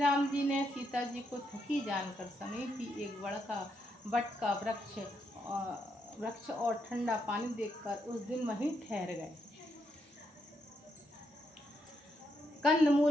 जी ने सीता जी को थकी जानकर समीपी एक बट का वृक्ष और ठंडा पानी देखकर उस दिन वहीं ठहर गए। कंद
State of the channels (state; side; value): normal; both; correlation 0.79